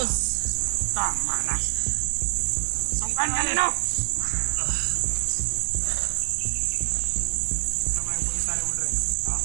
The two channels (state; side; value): silent; left; digital silence